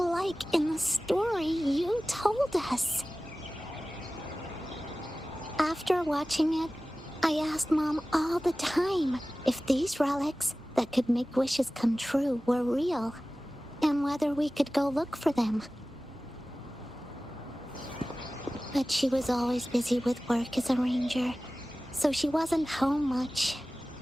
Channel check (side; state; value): both; normal; correlation 0.97